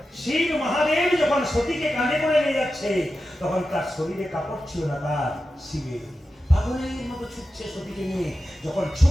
শিব মহাদেব যখন সতীকে কাঁধে করে নিয়ে যাচ্ছে, তখন তার শরীরে কাপড় ছিল না, তার শিবের। পাগলের মতো ছুটছে সতীকে নিয়ে, যখন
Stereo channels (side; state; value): both; normal; correlation 0.92